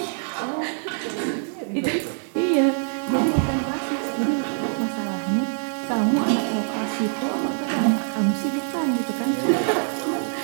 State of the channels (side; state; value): left; silent; digital silence